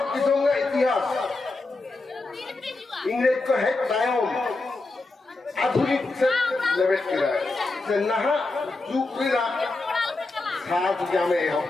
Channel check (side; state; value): right; quieter; 3.3 dB